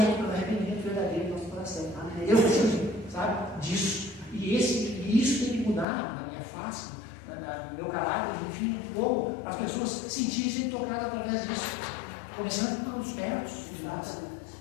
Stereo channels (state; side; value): drops out; right; at 5.9 s